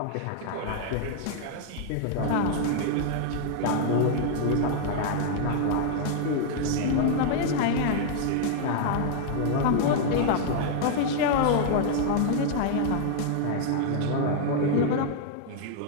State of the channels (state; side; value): different; both; correlation 0.00